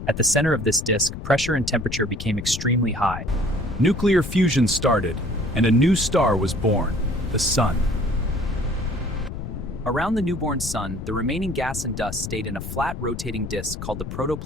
At the center of this disk, pressure and temperature became extremely high. Nuclear fusion started, and a new star was born, the Sun. Around the newborn sun, the remaining gas and dust stayed in a flat rotating disk called the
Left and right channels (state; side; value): noise; left; rumble, 8 dB below the sound